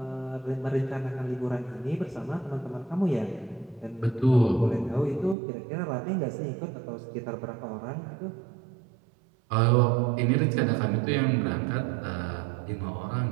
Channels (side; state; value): left; drops out; at 5.4 s